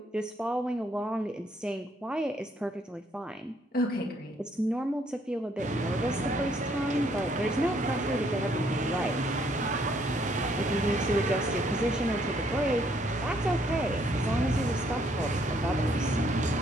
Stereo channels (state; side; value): normal; both; correlation 0.68